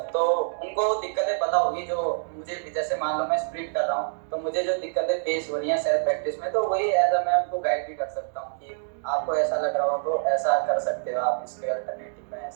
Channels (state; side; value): silent; left; digital silence